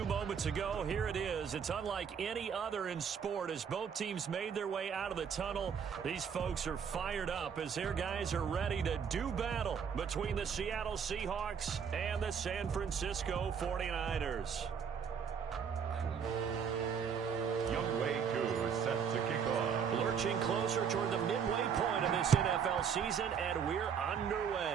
moments ago, here it is. It's unlike any other in sport as both teams made their way out of the tunnel. These folks are fired up as their guys are ready to do battle between the Seattle Seahawks and the San Francisco 49ers. Set to kick off. Lurching closer toward the midway point of this NFL season, and we're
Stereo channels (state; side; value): quieter; left; 7.0 dB